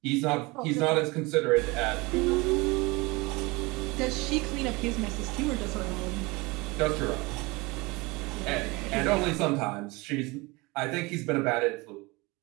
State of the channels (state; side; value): quieter; left; 24.5 dB